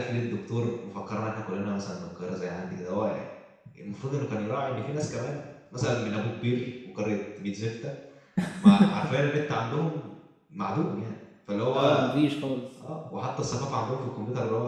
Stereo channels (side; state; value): both; identical; correlation 1.00